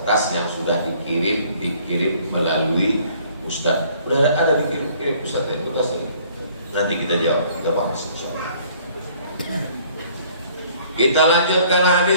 yang sudah dikirim melalui Ustadz. Udah ada dikirim Ustadz dari kertas ini. Nanti kita jawab, kita bahas insyaallah. Kita lanjutkan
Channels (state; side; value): inverted; both; correlation -0.58